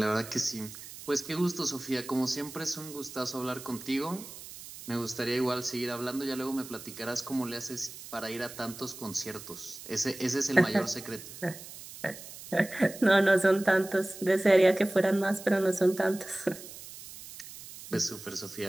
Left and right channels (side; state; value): right; noise; hiss, 14 dB below the sound